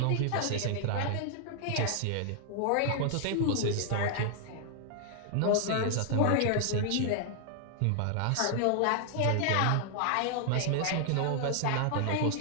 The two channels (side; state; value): both; different; correlation 0.00